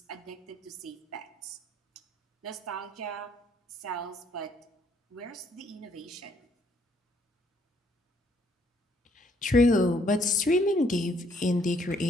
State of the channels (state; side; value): normal; both; correlation 0.67